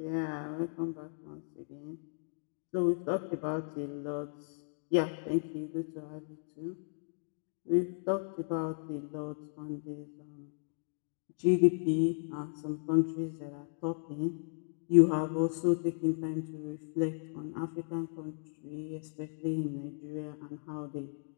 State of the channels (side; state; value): right; silent; digital silence